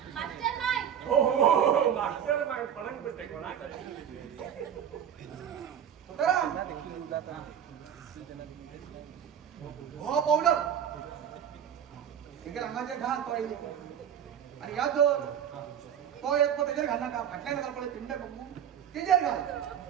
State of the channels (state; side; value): quieter; left; 9.1 dB